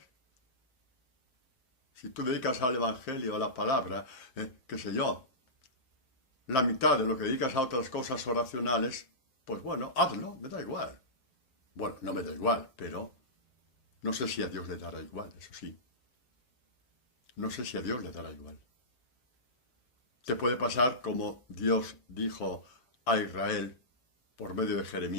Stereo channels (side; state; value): right; late; 7.6 ms